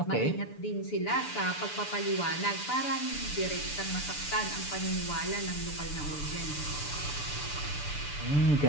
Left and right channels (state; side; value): late; right; 6.9 ms